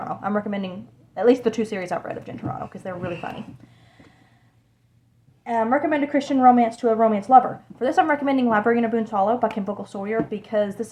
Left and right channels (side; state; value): both; identical; correlation 1.00